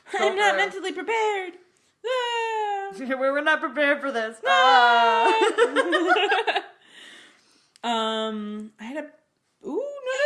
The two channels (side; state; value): both; identical; correlation 1.00